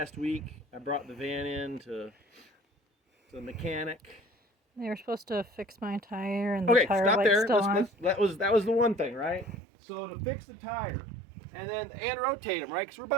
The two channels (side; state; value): left; drops out; at 9.6 s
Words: week, I brought the van in to the mechanic? They were supposed to fix my tire, and the tire light's still on. That was the one thing, right? So to fix the tire, and rotate them, right? Because we're